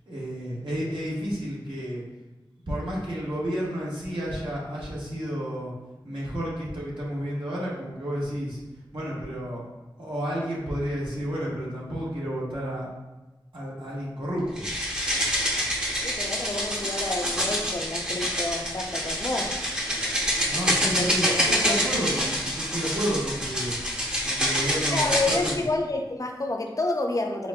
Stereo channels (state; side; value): normal; both; correlation 0.53